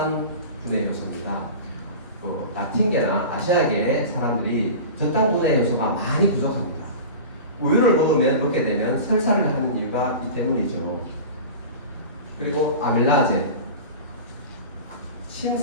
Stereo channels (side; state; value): both; inverted; correlation -0.33